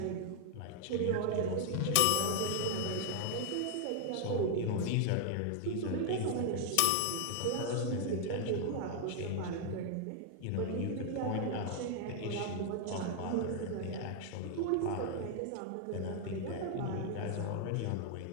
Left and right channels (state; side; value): different; both; correlation 0.00